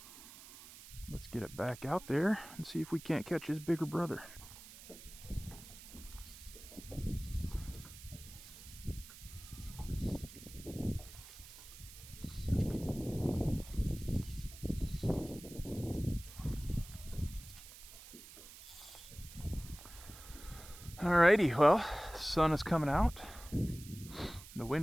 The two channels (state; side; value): noise; right; hiss, 16 dB below the sound